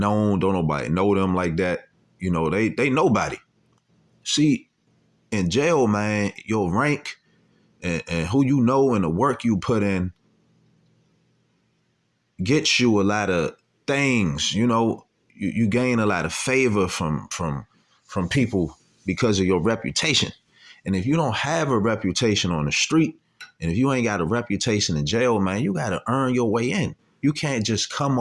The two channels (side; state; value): both; identical; correlation 1.00